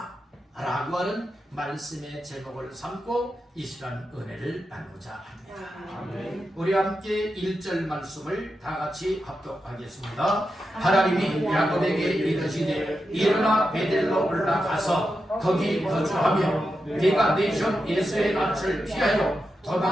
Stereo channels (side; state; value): both; normal; correlation 0.88